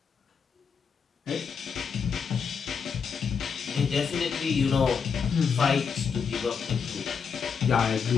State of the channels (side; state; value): right; quieter; 6.2 dB